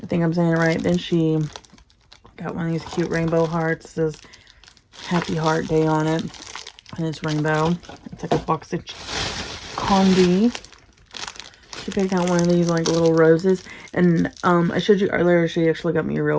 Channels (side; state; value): both; identical; correlation 1.00